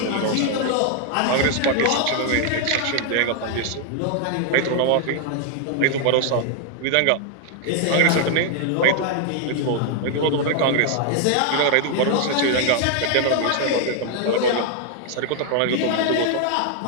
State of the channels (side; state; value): both; different; correlation 0.00